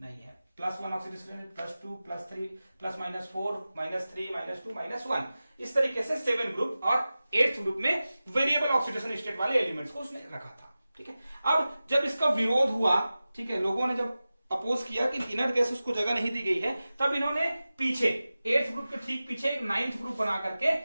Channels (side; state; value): both; inverted; correlation -0.95